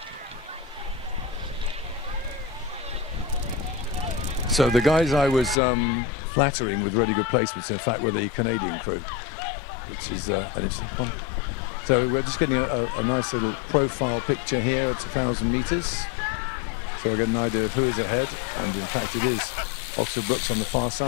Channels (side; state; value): right; drops out; at 5.6 s